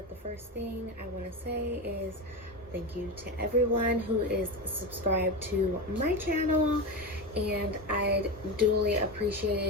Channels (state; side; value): normal; both; correlation 0.19